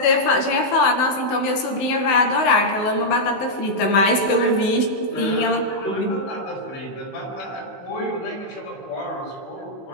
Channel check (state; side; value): late; right; 16 ms